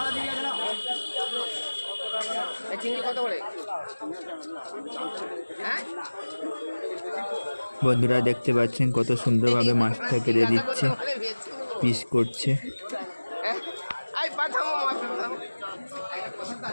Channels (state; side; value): inverted; both; correlation -1.00